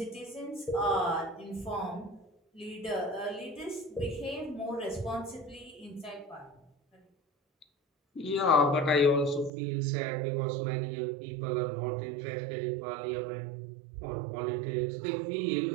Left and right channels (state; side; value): drops out; left; at 9.5 s